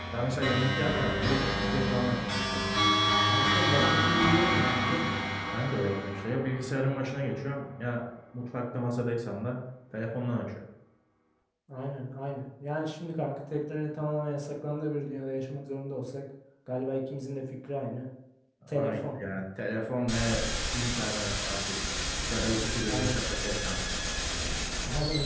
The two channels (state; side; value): identical; both; correlation 1.00